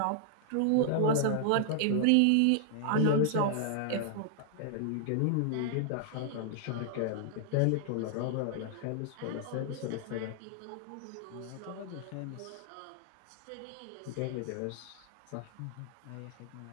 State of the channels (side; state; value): both; different; correlation -0.01